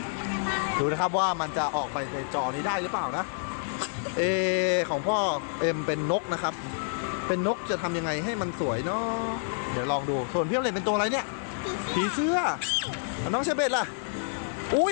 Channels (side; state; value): right; silent; digital silence